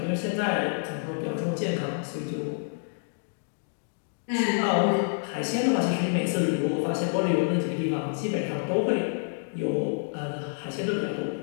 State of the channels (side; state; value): right; silent; digital silence